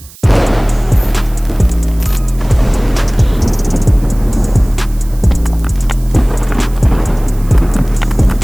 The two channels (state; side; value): noise; right; hiss, 22 dB below the sound